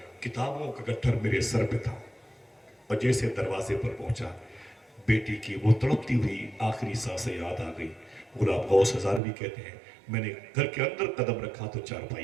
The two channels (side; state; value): left; drops out; at 9.2 s